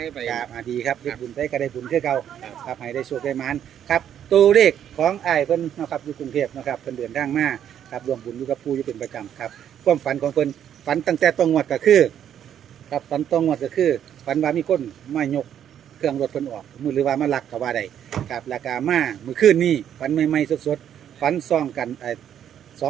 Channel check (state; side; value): quieter; left; 9.7 dB